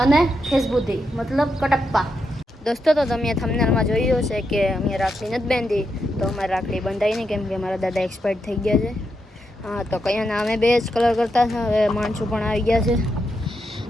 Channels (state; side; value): normal; both; correlation 0.84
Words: અને ફેસબુદ્ધિ, મતલબ કટપ્પા. દોસ્તો, તો તમે થંબનેલમાં જોયું હશે કે અમે રાખડી નથી બાંધી, તો અમારે રાખડી બંધાઈ નહીં કેમ કે મારા દાદા એક્સપાયર્ડ થઈ ગયા છે. હા, તો કયા અમે બે જ કલર કરતા છે. હવે માણસો પણ આવી ગયા છે.